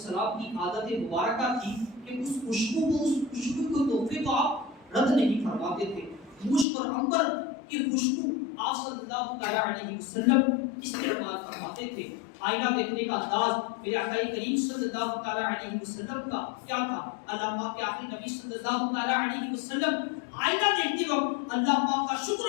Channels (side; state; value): right; drops out; at 6.7 s